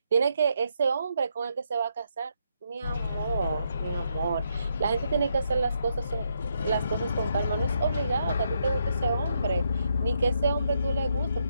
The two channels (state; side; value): inverted; both; correlation -0.77